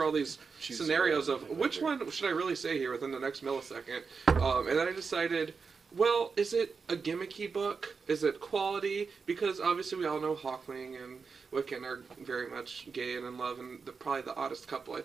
all these scenarios of which one should I really say here within the next millisecond. And then I decided, well, is it a gimmicky book? Is it quality? Because obviously we all know Hawkling and Wiccan are very much gay and in love, and probably the oddest couple I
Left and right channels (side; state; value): left; quieter; 5.2 dB